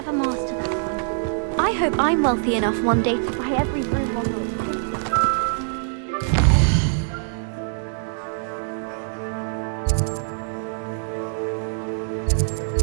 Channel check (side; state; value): left; silent; digital silence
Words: master that one. I hope I'm wealthy enough one day to buy every room on the